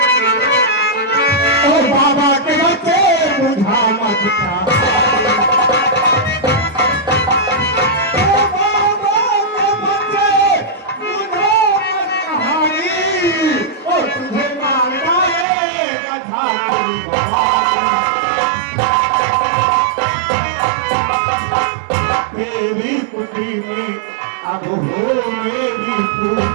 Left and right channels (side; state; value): left; drops out; at 15.5 s